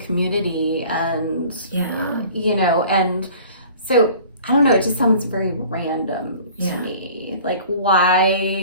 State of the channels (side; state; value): both; inverted; correlation -0.47